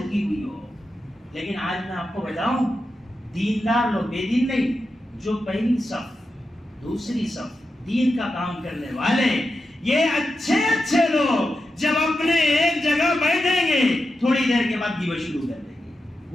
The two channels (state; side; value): normal; both; correlation 0.89